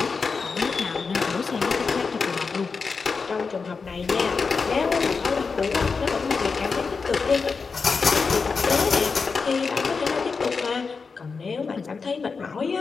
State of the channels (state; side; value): quieter; right; 4.9 dB